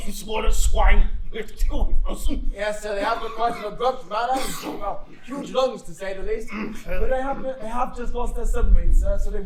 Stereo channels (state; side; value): identical; both; correlation 1.00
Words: Sort of swine with two Wilson. Yes, sir, they have got quite an abrupt manner. Well, huge lungs, to say the least. But they have just lost their submarine, sir, so they